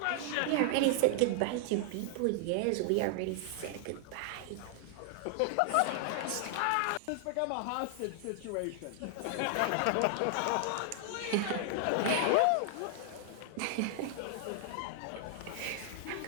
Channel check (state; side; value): different; both; correlation 0.00